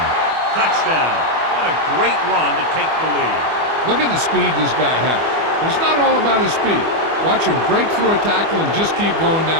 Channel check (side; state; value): left; late; 25 ms